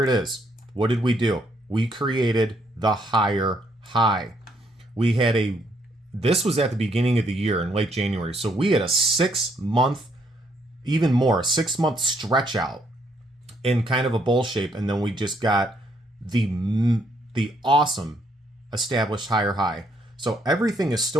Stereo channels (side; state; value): both; normal; correlation 0.71